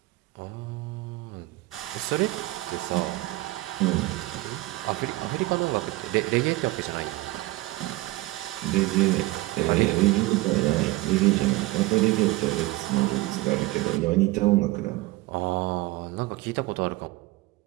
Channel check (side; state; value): left; quieter; 19.4 dB